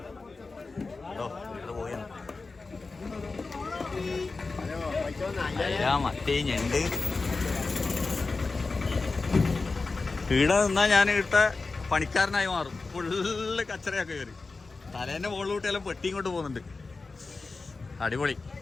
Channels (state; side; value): quieter; right; 3.9 dB